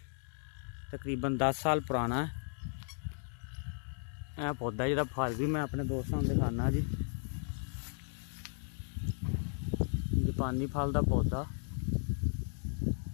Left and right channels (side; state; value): right; silent; 54 dB below the other